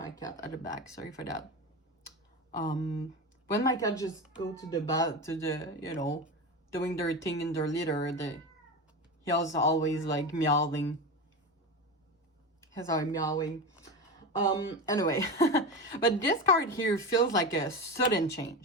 cat at the back, sorry for that. When my cat just go to the doing their thing in their litter, he was always like meowing. He's always meowing. Anyway, but this card here feels like a sudden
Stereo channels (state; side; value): normal; both; correlation 0.23